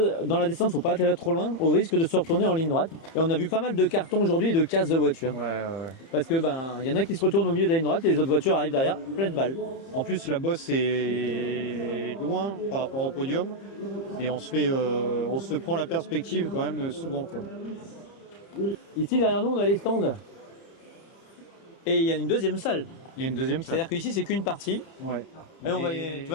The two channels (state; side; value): late; right; 30 ms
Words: dans la descente. Il ne faut pas atterrir trop loin au risque de se retourner en ligne droite. Et on a vu pas mal de cartons aujourd'hui et de casses de voitures. Ouais. Parce que il y en a qui se retournent au milieu de la ligne droite et les autres voitures arrivent derrière pleine balle. En plus, la bosse est loin par rapport au podium. Et on se prend la perspective quand même souvent, quoi. Ici, derrière nous, on a les stands. Et il y a une deuxième salle. Il y a une deuxième salle. C'est-à-dire qu'ici, c'est qu'une partie. Ouais. Et tu